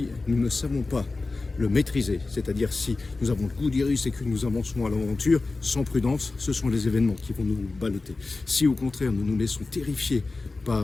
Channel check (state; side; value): quieter; right; 3.6 dB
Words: nous ne savons pas le maîtriser, c'est-à-dire si nous avons le goût du risque et que nous avançons à l'aventure sans prudence, ce sont les événements qui vont nous balloter. Si au contraire nous nous laissons terrifier